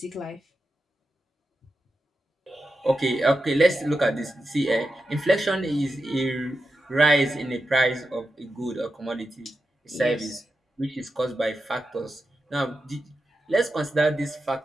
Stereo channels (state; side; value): normal; both; correlation 0.89